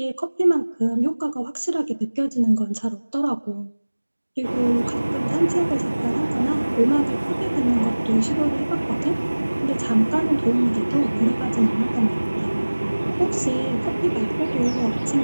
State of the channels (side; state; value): both; inverted; correlation -1.00